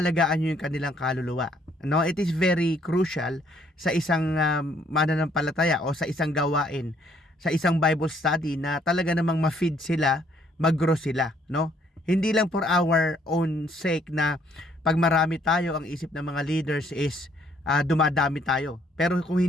nyo yung kanilang kaluluwa. No, it is very crucial sa isang mananampalataya o sa isang gawain, sa isang Bible study na talaga namang ma-feed sila, mag-grow sila, no? Hindi lang for our own sake na pag marami tayo, ang isip ng mga leaders is dumadami tayo. Pero kung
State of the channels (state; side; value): normal; both; correlation 0.66